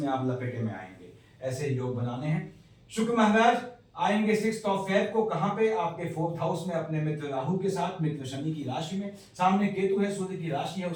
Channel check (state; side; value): identical; both; correlation 1.00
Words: आप लपेटे में आएंगे। ऐसे योग बनाने हैं। शुक्र महाराज आएंगे 6th ऑफ फेब को, कहां पे? आपके 4th हाउस में अपने मित्र राहु के साथ, मित्र शनि की राशि में। सामने केतु है, सूर्य की राशि है,